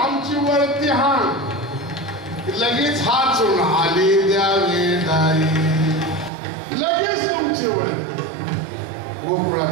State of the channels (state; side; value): drops out; left; at 6.3 s